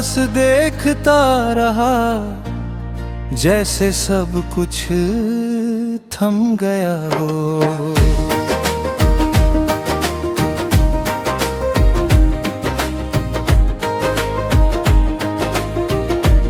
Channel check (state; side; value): identical; both; correlation 1.00